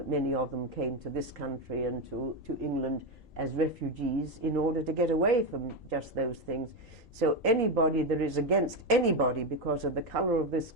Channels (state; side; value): normal; both; correlation 0.10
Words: many of them came to this country and to England as refugees in order to get away from just those things. So anybody that is against anybody because of the color of their